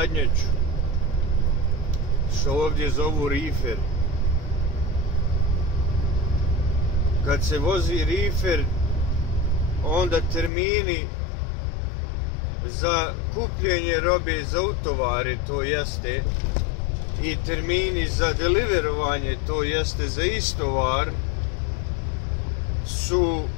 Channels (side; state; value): right; drops out; at 10.5 s